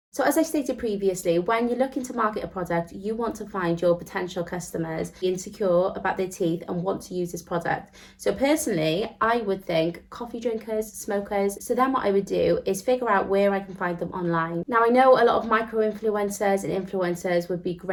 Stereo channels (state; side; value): identical; both; correlation 1.00